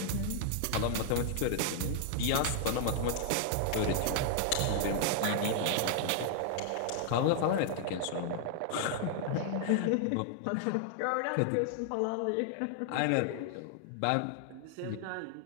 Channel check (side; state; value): both; different; correlation -0.01